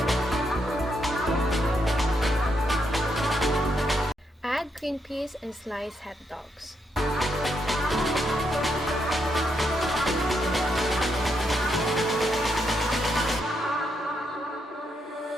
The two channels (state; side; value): normal; both; correlation 0.79